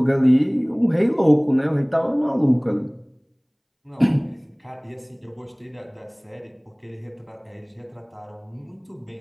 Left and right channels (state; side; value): identical; both; correlation 1.00